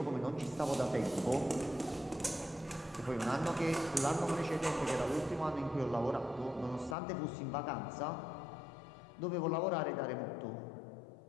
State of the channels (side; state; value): right; drops out; at 7.0 s